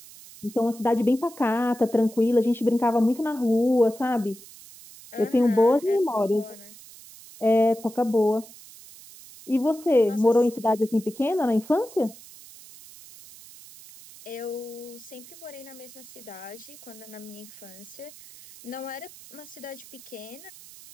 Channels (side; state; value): right; noise; hiss, 19 dB below the sound